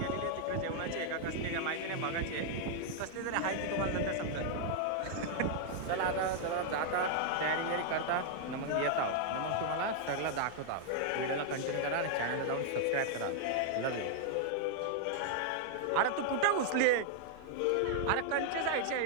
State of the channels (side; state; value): both; different; correlation -0.01